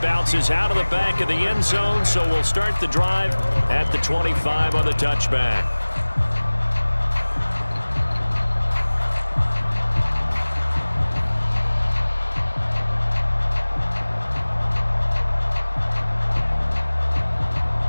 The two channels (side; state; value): both; inverted; correlation -1.00